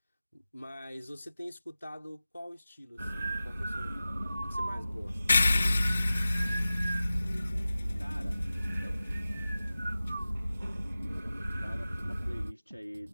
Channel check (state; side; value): inverted; both; correlation -0.95